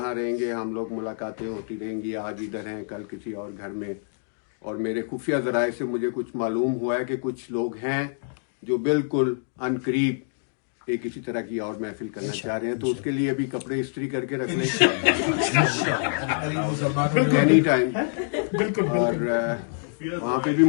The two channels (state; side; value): silent; right; digital silence